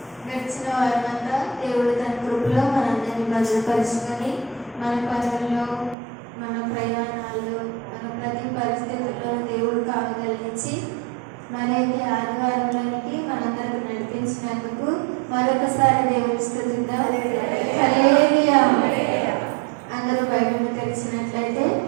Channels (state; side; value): drops out; left; at 6.0 s